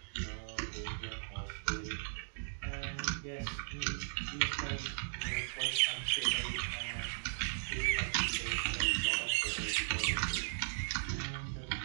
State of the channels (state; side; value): silent; left; digital silence